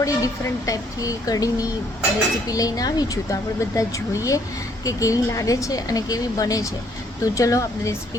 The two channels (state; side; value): normal; both; correlation 0.66